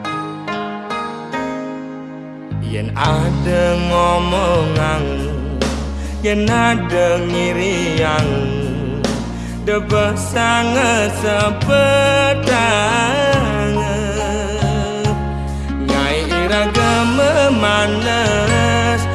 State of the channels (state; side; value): identical; both; correlation 1.00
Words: yen ada ngomongan yen ada ngiriang debah sangat sepetang ngai iraga memanas